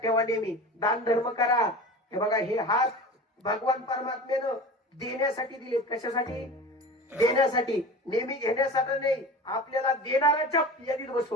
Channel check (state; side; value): normal; both; correlation 0.34